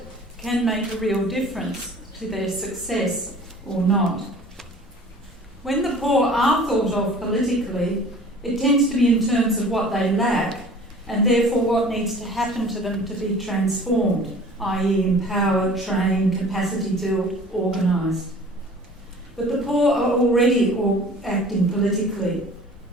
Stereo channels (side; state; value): both; normal; correlation 0.46